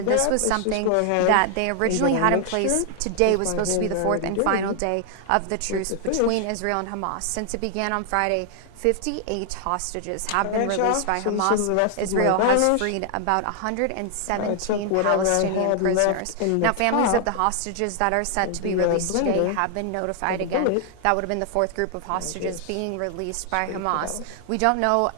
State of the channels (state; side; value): different; both; correlation 0.00